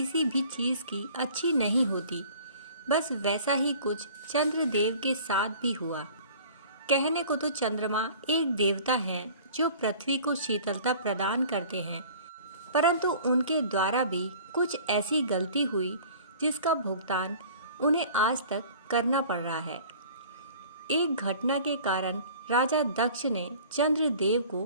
भी चीज की अच्छी नहीं होती। बस वैसा ही कुछ चंद्रदेव के साथ भी हुआ। कहने को तो चंद्रमा एक देवता है जो पृथ्वी को शीतलता प्रदान करते हैं, परंतु उनके द्वारा भी कुछ ऐसी गलती हुई जिसका भुगतान उन्हें आज तक करना पड़ रहा है। एक घटना के कारण राजा दक्ष ने चंद्रदेव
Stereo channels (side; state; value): both; inverted; correlation -0.47